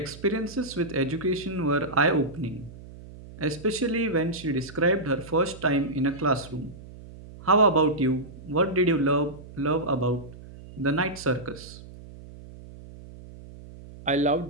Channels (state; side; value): noise; right; hum, 17 dB below the sound